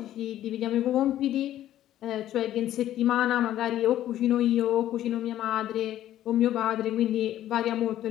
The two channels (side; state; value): right; quieter; 12.6 dB